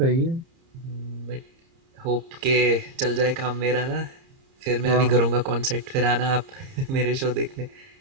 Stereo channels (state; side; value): late; left; 30 ms